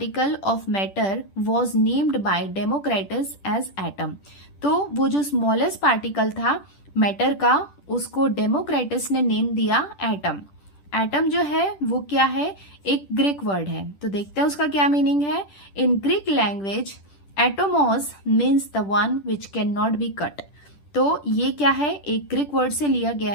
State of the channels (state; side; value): late; right; 10 ms